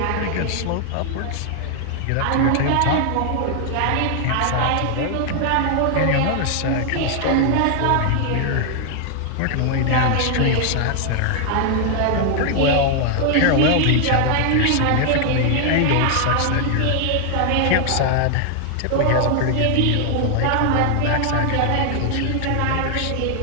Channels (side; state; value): both; different; correlation 0.00